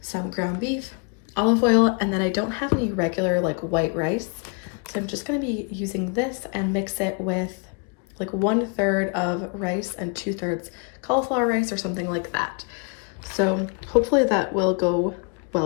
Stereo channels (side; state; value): right; quieter; 36.5 dB